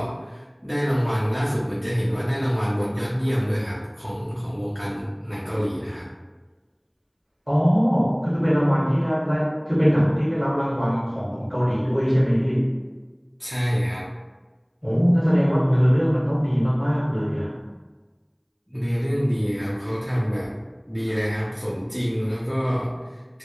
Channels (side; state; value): both; identical; correlation 1.00